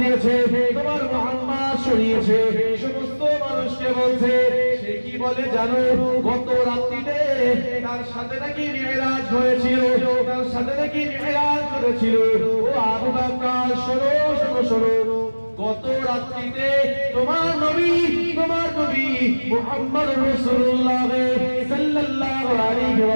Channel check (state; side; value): inverted; both; correlation -1.00